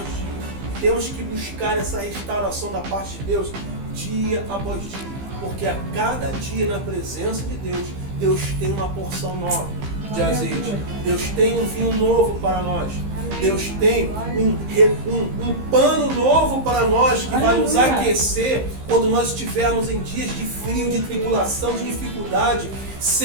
dia. Temos que buscar essa restauração da parte de Deus dia após dia, porque a cada dia na presença de Deus, Deus tem uma porção nova de azeite. Deus tem um vinho novo para nós. Deus tem um pano novo para nós que vai nos aquecer quando nós estivermos em dias de frio, de tribulação, de dificuldade.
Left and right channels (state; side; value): late; left; 15 ms